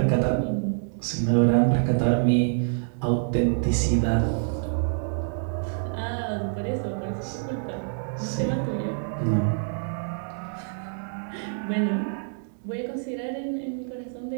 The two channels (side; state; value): left; silent; digital silence